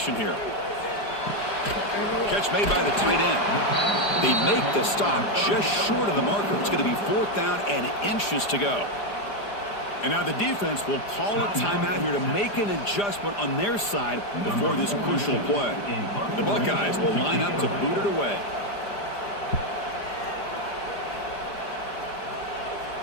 here. Catch made by the tight end. They make the stop just short of the marker. It's going to be fourth down and inches to go. And now the defense will call a timeout here to make an adjustment on their side before this crucial play. The Buckeyes will line up to boot it away.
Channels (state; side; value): late; right; 4.9 ms